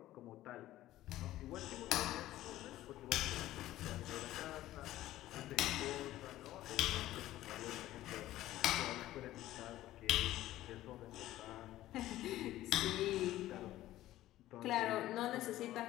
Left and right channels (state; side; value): quieter; right; 14.8 dB